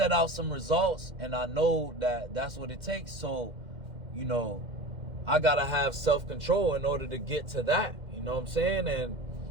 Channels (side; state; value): left; late; 2.1 ms